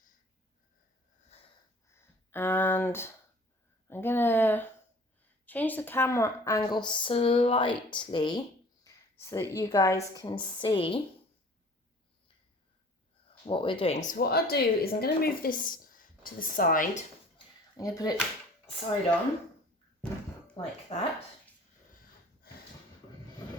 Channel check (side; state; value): both; normal; correlation 0.49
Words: And I'm gonna change the camera angle slightly so that you guys can see what we're doing. So what I'll do is I'm going to move this to the side. I'm going to put it side on like that